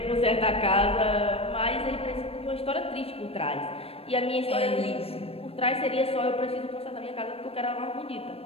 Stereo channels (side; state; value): right; late; 0.28 ms